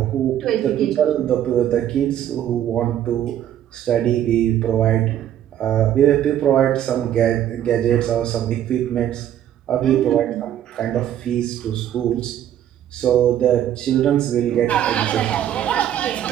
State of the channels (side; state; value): left; quieter; 11.0 dB